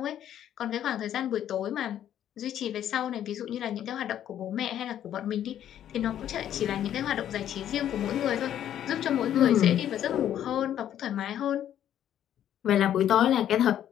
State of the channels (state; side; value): quieter; right; 10.8 dB